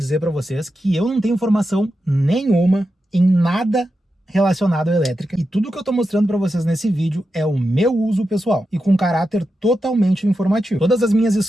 para vocês que eu não tenho informação nenhuma em nada relacionado à elétrica, e tudo que eu estou mostrando para vocês nesse vídeo é o meu uso pessoal e com caráter totalmente informativo. Todas as minhas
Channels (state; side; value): normal; both; correlation 0.89